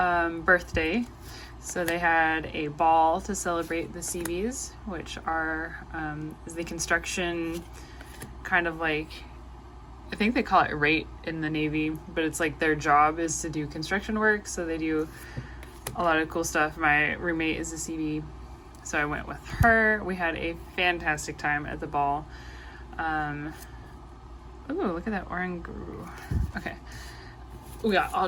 birthday. So they had a ball to celebrate the CBs, which are is the construction kind of like, I think they call it rate in the Navy, but it's like their job is to do construction work. So they do a lot of cool stuff. My roommate is a CB, so I went with her. We had a fantastic time at the ball. Ooh, look at that Oranguru. Okay. We got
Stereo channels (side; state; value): both; identical; correlation 1.00